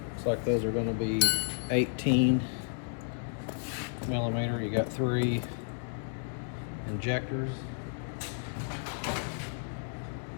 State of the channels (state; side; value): silent; right; digital silence